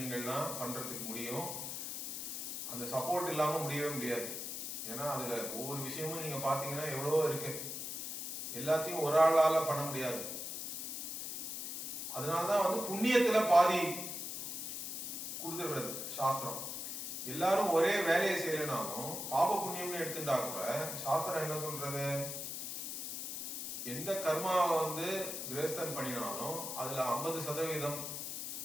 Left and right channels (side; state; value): left; noise; hiss, 5 dB below the sound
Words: பண்றதுக்கு முடியும். அந்த சப்போர்ட் இல்லாம முடியவே முடியாது. ஏன்னா அதுல ஒவ்வொரு விஷயமும் நீங்க பாத்தீங்கன்னா எவ்வளவோ இருக்கு, எல்லாத்தையும் ஒரு ஆளால பண்ண முடியாது. அதனாலதான் வந்து புண்ணியத்துல பாதி கொடுத்துடுறது சாஸ்திரம். எல்லாரும் ஒரே வேலையை செய்யலனாலும் பாப புண்ணியம்னு எடுத்துட்டா கூட சாஸ்திரம் என்ன சொல்றது, எந்த கர்மாவை வந்து கிரேஸ்தன் பண்ணினாலும் அதுல 50%